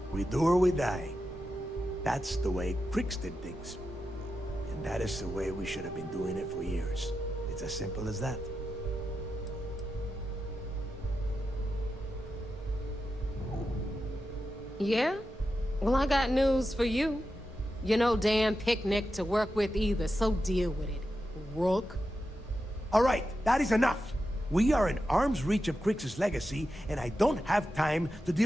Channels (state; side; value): normal; both; correlation 0.89